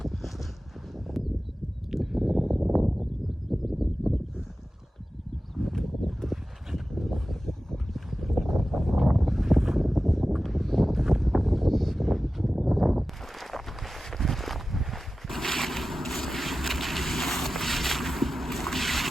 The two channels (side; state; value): both; normal; correlation 0.95